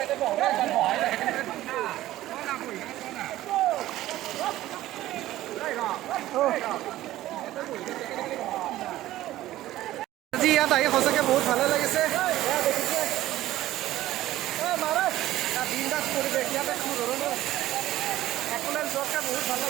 আজি ইয়াত আহি সঁচাকৈ বহুত ভালে লাগিছে। বিন্দাছ পৰিৱেশ ইয়াতে, কোনো ধৰণৰ একোলেন যোৱাতকৈ বহুত ভাল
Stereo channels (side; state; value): left; quieter; 15.1 dB